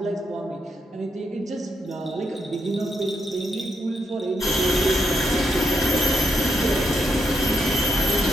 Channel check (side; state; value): both; normal; correlation 0.81